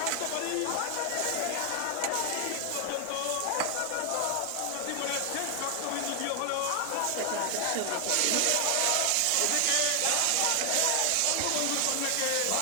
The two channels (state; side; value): different; both; correlation 0.00